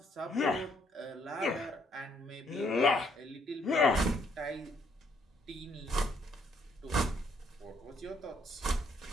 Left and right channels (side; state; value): both; normal; correlation 0.69